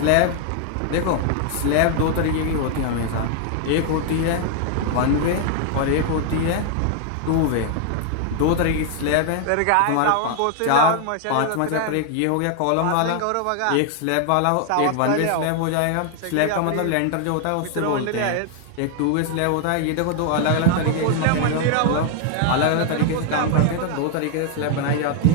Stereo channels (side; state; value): both; different; correlation 0.00